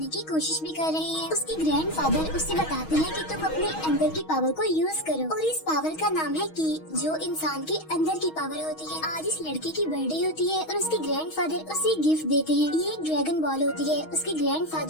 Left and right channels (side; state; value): right; late; 6.3 ms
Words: की कोशिश भी कर रहे हैं। उसके ग्रैंडफादर उससे बताते हैं कि तुम अपने अंदर की पावर को यूज करो और इस पावर का नाम है की, जो इंसान के अंदर की पावर होती है। आज इस लड़के की बर्थडे होती है और उसके ग्रैंडफादर उसे गिफ्ट देते हैं। ये एक ड्रैगन बॉल होती है। उसके